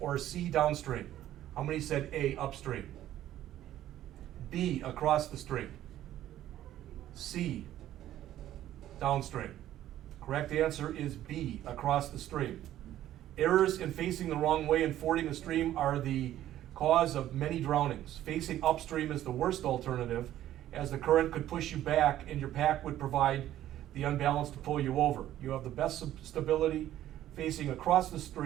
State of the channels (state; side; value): quieter; left; 12.8 dB